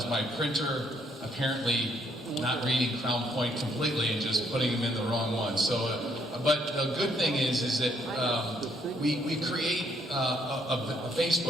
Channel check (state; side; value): normal; both; correlation 0.70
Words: my printer apparently not reading Crown Point completely and just putting them in the wrong one. So, but the good thing is that we create a